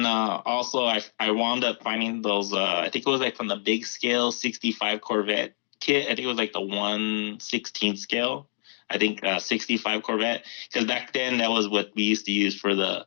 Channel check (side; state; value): right; silent; digital silence